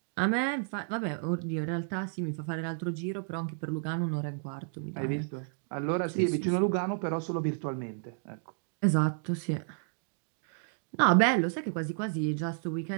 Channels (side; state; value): left; silent; digital silence